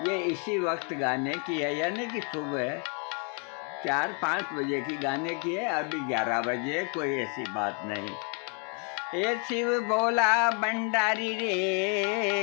ये इसी वक्त गाने की है, यानी कि सुबह 4-5 बजे की गाने की है। अभी 11 बजे, कोई ऐसी बात नहीं। ये शिव भोला भंडारी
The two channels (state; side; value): quieter; right; 37.6 dB